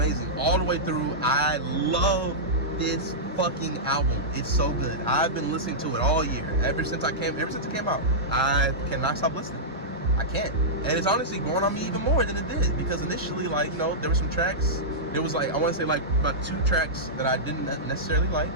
all the way through. I love this fucking album. It's so good. I've been listening to it all year. Ever since it came out, I cannot stop listening. I can't. And it's honestly growing on me even more than it did, because initially, like, you know, there were some tracks. There was like, I want to say like about 2 tracks that I didn't necessarily like.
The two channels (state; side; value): normal; both; correlation -0.12